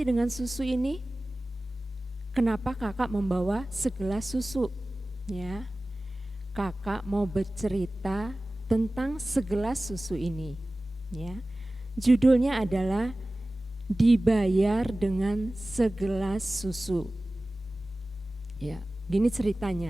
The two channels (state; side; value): normal; both; correlation 0.97